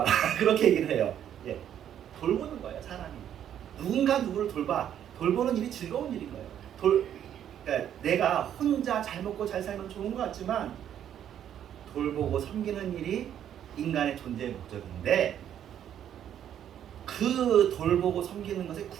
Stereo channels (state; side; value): quieter; left; 10.0 dB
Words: 그렇게 얘기를 해요. 예, 돌보는 거예요, 사람이. 누군가 누구를 돌보는 일이 즐거운 일인 거예요. 그러니까 내가 혼자 잘 먹고 잘 살면 좋은 것 같지만 돌보고 섬기는 일이 인간의 존재의 목적인데 그 돌보고 섬기는 것의